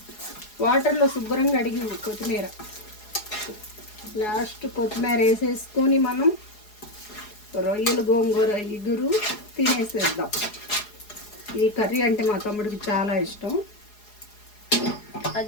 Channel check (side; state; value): right; late; 4.8 ms